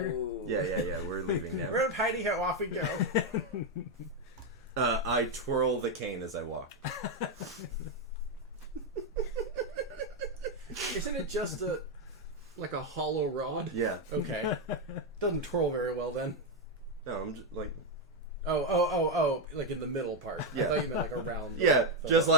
go. Yeah. We're leaving now. We're up hidey ho, off we go. I twirl the cane as I walk. Isn't it just like a hollow rod? Yeah. Okay. Doesn't twirl very well then. No, I'm just like. Oh, like in the middle part. Yeah. I thought you meant like around. Yeah, just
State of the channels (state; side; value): normal; both; correlation 0.04